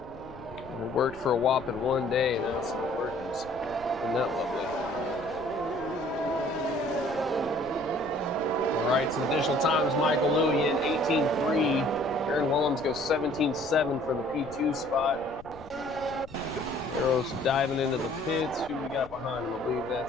It worked for a whopping one day, and now it's not working. Isn't that lovely? All right, some additional times. Michael Louie in 18.3. Aaron Willems goes 17.7 for the P2 spot. Arrow's diving into the pits. Who we got behind him? I believe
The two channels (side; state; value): left; noise; rumble, 20 dB below the sound